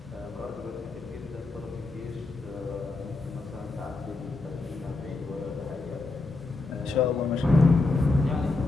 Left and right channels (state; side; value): quieter; right; 3.5 dB